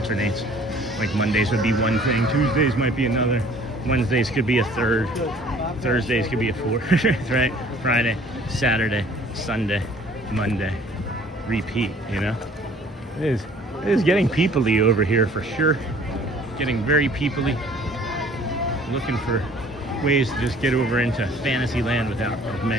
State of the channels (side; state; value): both; normal; correlation 0.53